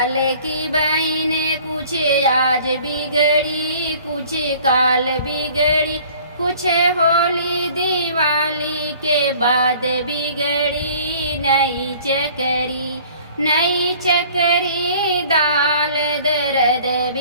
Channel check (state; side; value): inverted; both; correlation -0.51